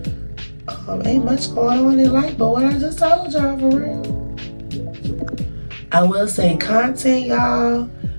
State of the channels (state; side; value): inverted; both; correlation -1.00